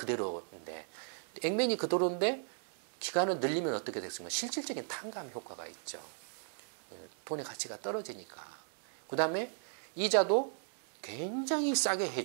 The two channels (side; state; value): left; silent; digital silence